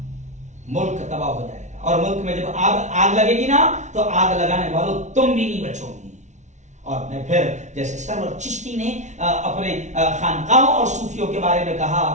ملک تباہ ہو جائے گا. اور ملک میں جب آگ لگے گی نا تو آگ لگانے والوں تم بھی نہیں بچو گی. اور میں پھر جیسے سرور چشتی نے اپنے خانقاہوں اور صوفیوں کے بارے میں کہا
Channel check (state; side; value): late; left; 0.34 ms